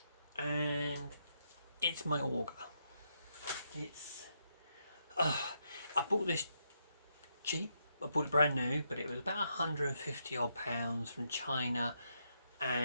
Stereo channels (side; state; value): both; inverted; correlation -0.79